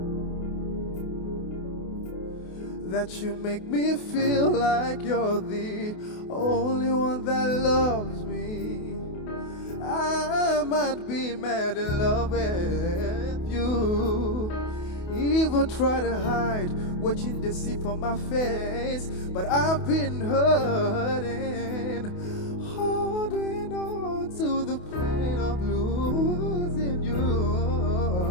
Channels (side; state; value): right; late; 28 ms